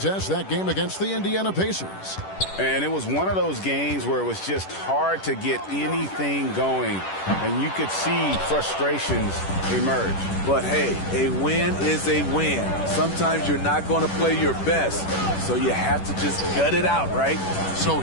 that game against the Indiana Pacers. And it was one of those games where it was just hard to get anything going. And you could see frustrations emerge. But hey, a win is a win. Sometimes you're not going to play your best, so you have to just gut it out, right? So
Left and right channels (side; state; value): right; late; 10 ms